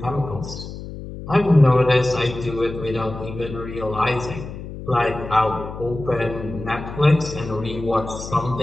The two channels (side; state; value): left; noise; hum, 11 dB below the sound